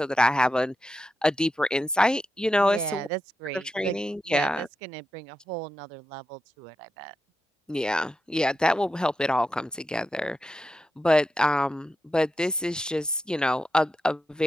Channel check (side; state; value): both; normal; correlation 0.87